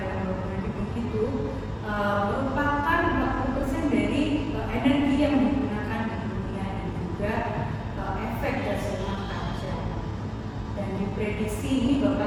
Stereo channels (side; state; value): both; identical; correlation 1.00